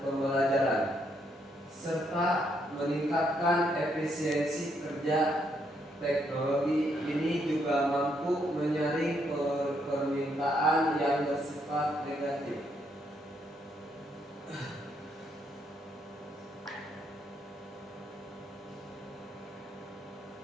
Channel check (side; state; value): both; normal; correlation 0.74